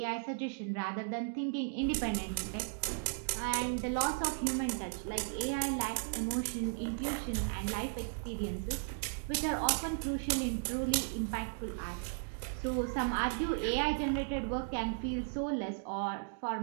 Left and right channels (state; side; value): silent; left; digital silence